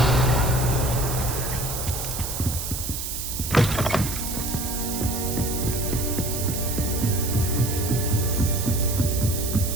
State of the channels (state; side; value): noise; right; hiss, 5 dB below the sound